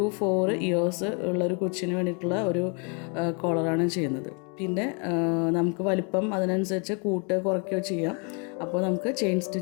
4 ഇയേഴ്സ് ഉള്ളൊരു കൊച്ചിന് വേണ്ടിയിട്ടുള്ള ഒരു കോളറാണ് ചെയ്യുന്നത്. പിന്നെ നമുക്ക് വലിപ്പം അതിനനുസരിച്ച് കൂട്ടുകയോ കുറയ്ക്കുകയോ ചെയ്യാം. അപ്പോൾ നമുക്ക് ചെയിൻ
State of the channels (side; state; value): right; quieter; 36.0 dB